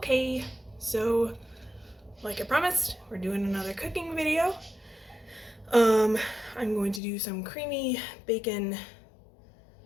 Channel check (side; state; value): right; drops out; at 7.0 s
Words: so like I promised, we're doing another cooking video. I'm going to do some creamy bacon